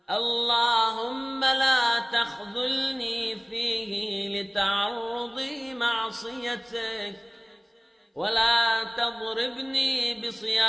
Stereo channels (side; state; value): both; identical; correlation 1.00